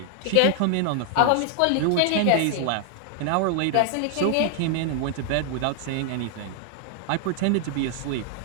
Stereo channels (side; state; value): both; different; correlation 0.00